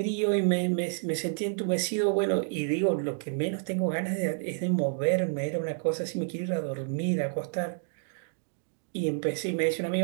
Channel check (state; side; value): silent; left; digital silence